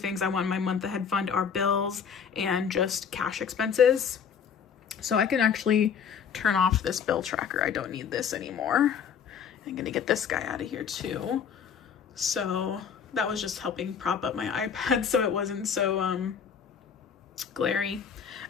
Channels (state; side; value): quieter; right; 7.2 dB